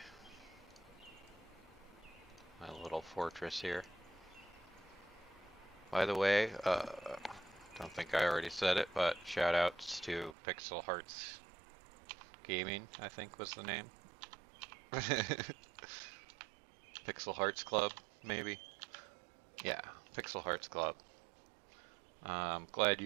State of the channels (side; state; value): left; drops out; at 10.4 s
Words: little fortress here. By the way, don't think I already said it, but shout outs to Pixel Hearts Gaming, I think was the name. Pixel Hearts Club, maybe? Yeah, Pixel Hearts Club. I'm glad